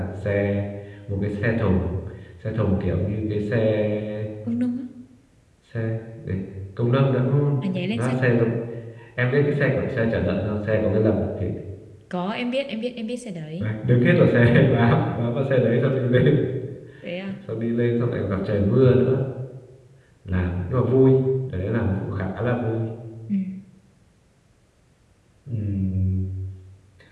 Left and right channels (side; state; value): both; identical; correlation 1.00